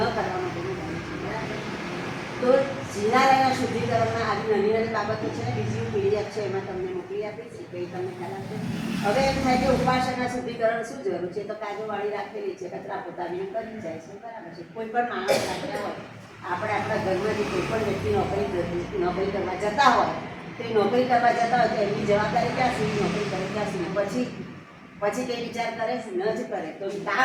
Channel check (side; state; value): both; identical; correlation 1.00